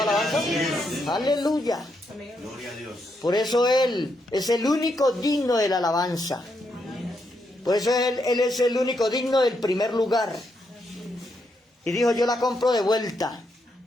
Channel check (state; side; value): normal; both; correlation 0.80